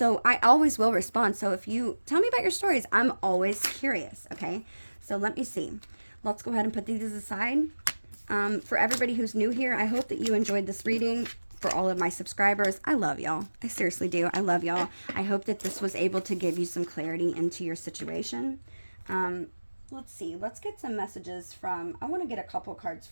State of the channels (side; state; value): both; inverted; correlation -1.00